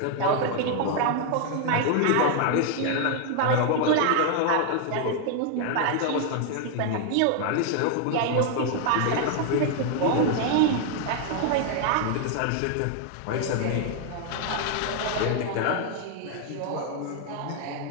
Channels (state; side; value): different; both; correlation 0.00